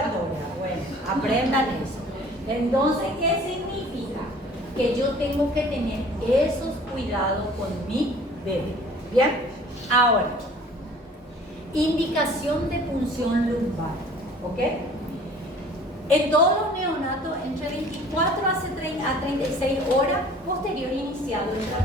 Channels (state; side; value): normal; both; correlation 0.49